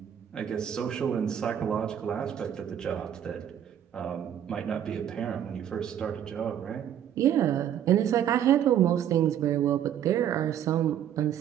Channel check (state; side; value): quieter; left; 9.9 dB